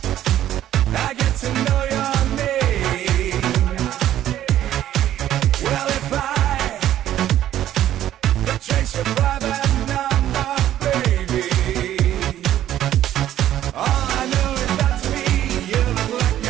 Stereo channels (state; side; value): quieter; left; 12.2 dB